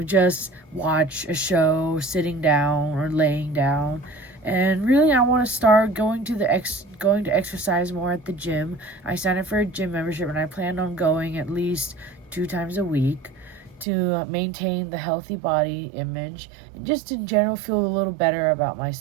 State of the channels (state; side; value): drops out; left; at 13.9 s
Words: just watch a show sitting down or laying down. And really, I want to start going to exercise more at the gym. I signed up for a gym membership, and I plan on going at least 2 times a week to maintain the healthy body image and just in general feel a little better about